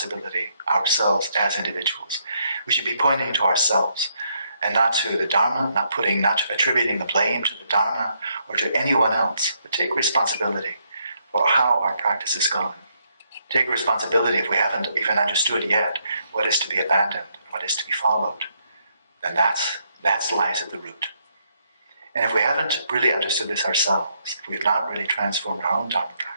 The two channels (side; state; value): both; inverted; correlation -0.74